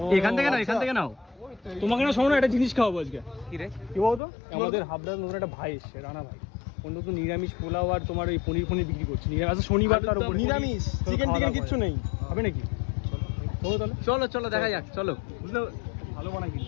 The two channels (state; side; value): drops out; right; at 4.2 s